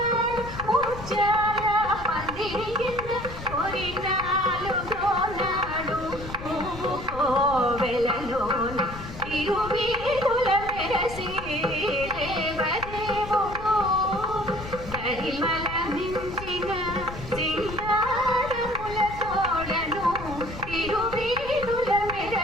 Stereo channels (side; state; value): left; noise; rumble, 11 dB below the sound